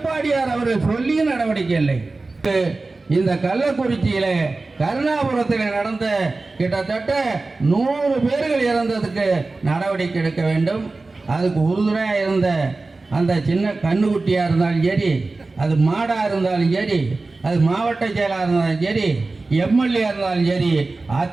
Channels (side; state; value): left; quieter; 3.5 dB